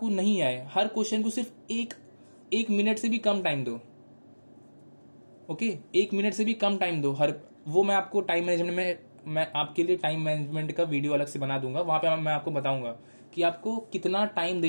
नहीं आए, हर क्वेश्चन को सिर्फ एक मिनट से भी कम टाइम दो। ओके, 1 मिनट से भी कम टाइम दो हर, वो मैं आपको टाइम मैनेजमेंट में, मैं आपके लिए टाइम मैनेजमेंट का वीडियो अलग से बना दूंगा, वहां पे मैं आपको बताऊंगा कि आपको कितना टाइम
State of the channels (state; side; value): inverted; both; correlation -1.00